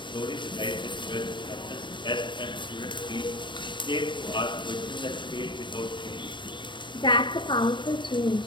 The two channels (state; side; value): late; right; 0.23 ms